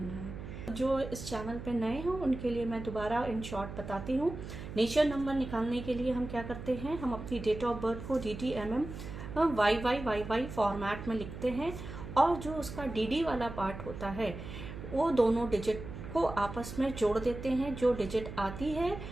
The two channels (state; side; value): noise; right; hum, 10 dB below the sound